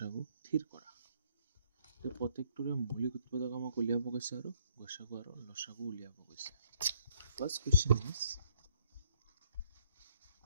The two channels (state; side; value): inverted; both; correlation -0.66